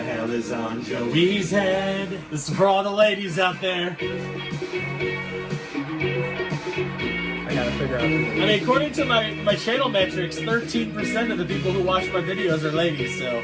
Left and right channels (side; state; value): both; identical; correlation 1.00